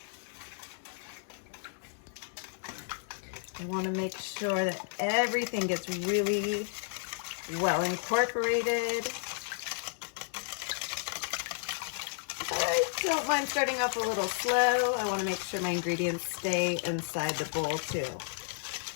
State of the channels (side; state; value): right; silent; digital silence